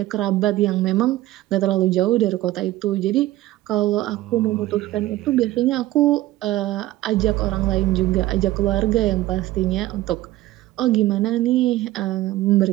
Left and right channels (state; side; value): quieter; left; 16.2 dB